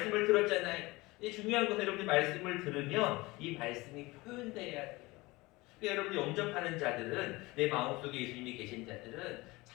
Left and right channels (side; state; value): right; quieter; 22.0 dB